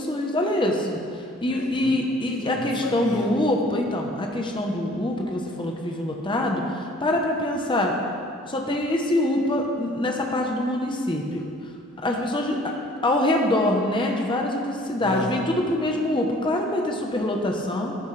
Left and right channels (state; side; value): normal; both; correlation 0.54